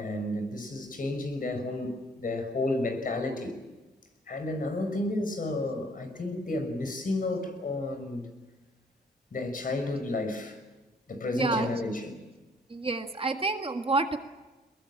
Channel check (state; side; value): normal; both; correlation 0.60